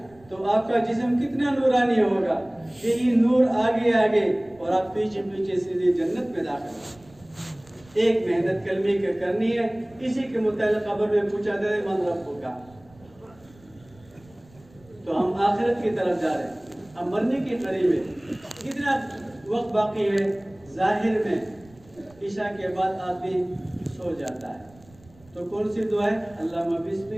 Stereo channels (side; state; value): right; noise; rumble, 27 dB below the sound